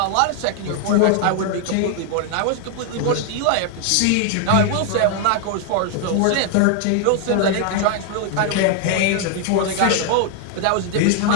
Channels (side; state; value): both; different; correlation 0.00